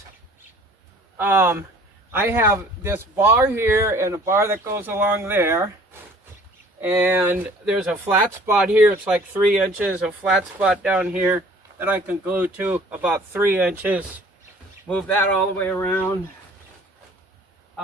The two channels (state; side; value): normal; both; correlation 0.52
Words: I have this bar here and a bar that goes along there. And there's a flat spot here, it's like 3 inches, a flat spot down here that I can glue to about 3 inches. Move that all the way around.